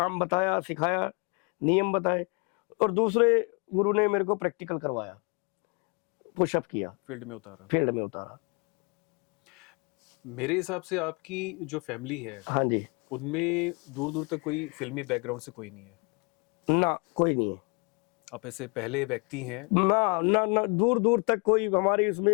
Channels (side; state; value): right; quieter; 33.1 dB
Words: बताया, सिखाया, नियम बताए, और दूसरे गुरु ने मेरे को प्रैक्टिकल करवाया, पुशअप किया, फील्ड में उतारा। फील्ड में उतारा। मेरे हिसाब से आपकी जो फैमिली है, हाँ जी। उनमें दूर दूर तक कोई फिल्मी बैकग्राउंड से कोई नहीं है। ना, कोई नहीं है। आप ऐसे पहले व्यक्ति हैं। ना ना ना, दूर दूर तक कोई हमारी